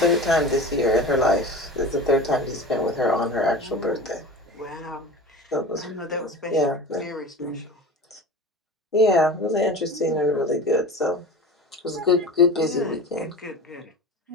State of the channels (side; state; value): both; normal; correlation 0.33